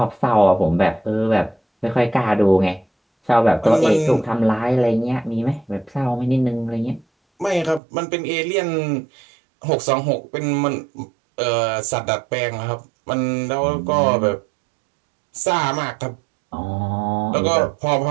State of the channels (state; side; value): drops out; left; at 7.8 s